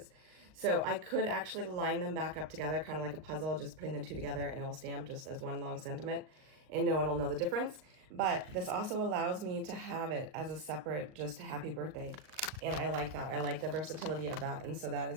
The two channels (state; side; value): late; left; 38 ms